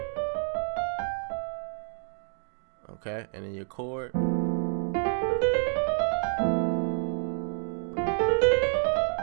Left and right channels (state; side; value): silent; left; digital silence